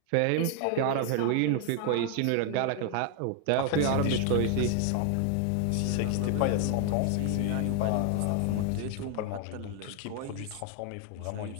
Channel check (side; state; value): both; different; correlation 0.00